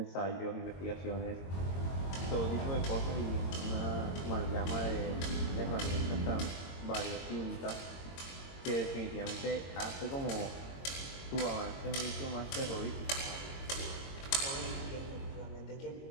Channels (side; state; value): right; late; 22 ms